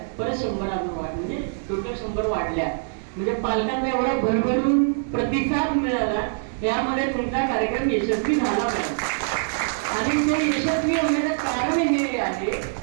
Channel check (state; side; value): silent; left; digital silence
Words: परत 100 अजून वाढ, म्हणजे टोटल 100 वाढल्या. म्हणजे पालकांना एवढा भरभरून प्रतिसाद मिळाला, यामध्ये तुमचा कार्यक्रम यशस्वी झाला पाहिजे. आणि ते यशस्वी होण्याचं कारण हे आहे